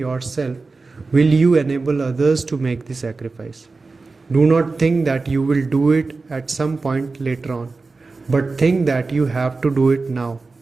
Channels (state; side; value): quieter; left; 3.9 dB